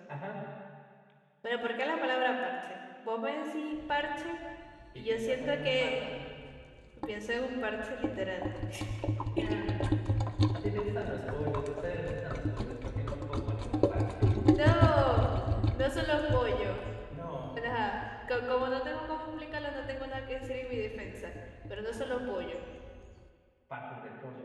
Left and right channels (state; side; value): identical; both; correlation 1.00